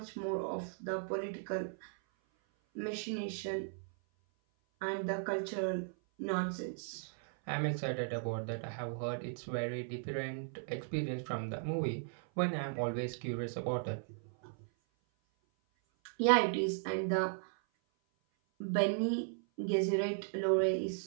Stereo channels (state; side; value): silent; left; 53 dB below the other